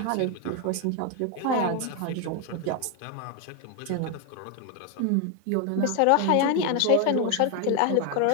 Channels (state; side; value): different; both; correlation 0.01